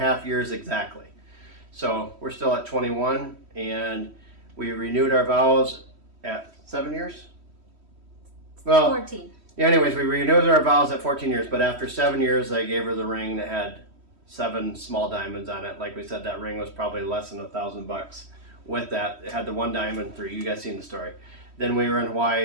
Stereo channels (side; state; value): left; late; 3.1 ms